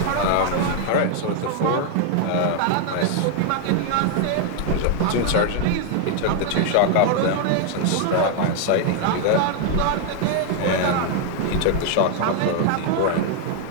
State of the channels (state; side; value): different; both; correlation 0.01